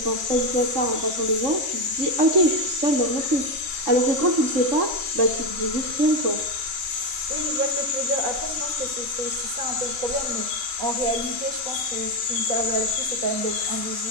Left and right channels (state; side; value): late; left; 3.6 ms